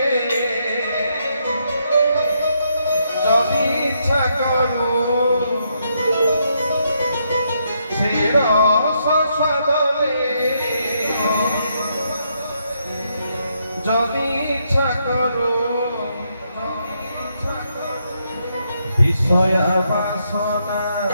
যদি ইচ্ছা করু, শিরস সদনে যদি ইচ্ছা করু, বিষয়া বাসনা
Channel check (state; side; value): inverted; both; correlation -0.77